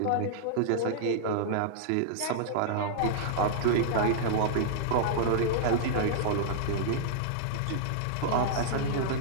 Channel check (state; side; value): different; both; correlation -0.02